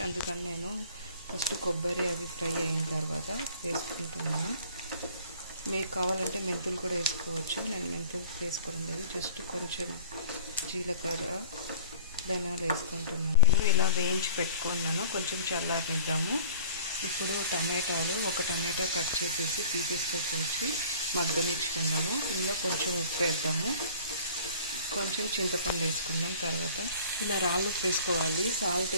అందుకని నేను ఫస్ట్ కొబ్బరి అవి ఫ్రై అయిన తర్వాత వేసుకుంటున్నాను. మీకు కావాలంటే మెంతులు కూడా వేసుకోవచ్చు. నేను మెంతులు వేసుకోవడం లేదు, జస్ట్ కొంచెం జీలకర్ర, ధనియాలు వేసుకుంటున్నాను. నేను ఇలా వేయించి పెట్టుకున్నాను. కొంచెం చల్లారనిద్దాము. ఇప్పుడు టమాటాలు, ఒక టమాటా కట్ చేసేసి పీసెస్తో కోసి మగ్గనిచ్చుకుందాము. ఇందులో కొంచెం ఉప్పు వేద్దాము, కొంచెం చింతపండు వేసుకుందాం. తర్వాత ఇలా రాళ్ళు ఉప్పు వేసుకోవాలి. సాల్ట్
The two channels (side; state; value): both; inverted; correlation -0.46